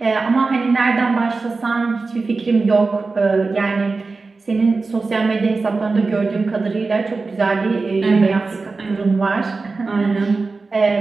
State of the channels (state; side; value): quieter; left; 3.9 dB